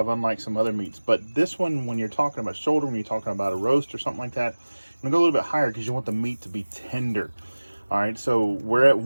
unlike some other meats. But this one, when you're talking about shoulder, when you're talking about a roast or something like that, I'm gonna go a little bit higher because you want the meat to be tender. All right, so we're at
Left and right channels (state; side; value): inverted; both; correlation -1.00